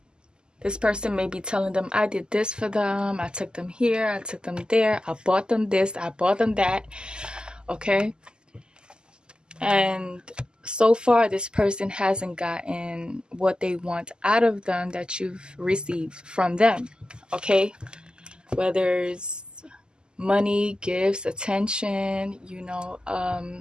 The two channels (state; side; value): late; left; 0.046 ms